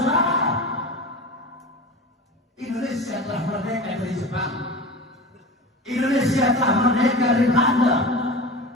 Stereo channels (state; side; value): normal; both; correlation 0.31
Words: Indonesia telah merdeka dari Jepang, Indonesia telah merdeka dari Belanda,